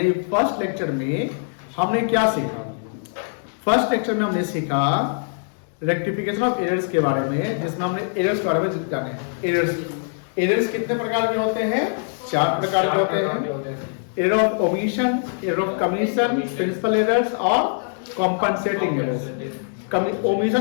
first lecture में हमने क्या सीखा? फर्स्ट लेक्चर में हमने सीखा रेक्टिफिकेशन ऑफ एरर्स के बारे में, जिसमें हमने एरर्स के बारे में जाने। एरर्स कितने प्रकार के होते हैं? 4 प्रकार के होते हैं। Error of omission, error of commission, principal errors और कॉम्पनसेटिंग एरर्स।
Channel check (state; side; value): silent; right; digital silence